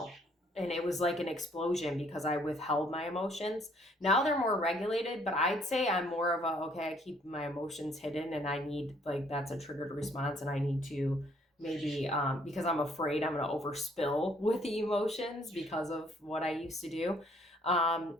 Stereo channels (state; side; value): normal; both; correlation 0.64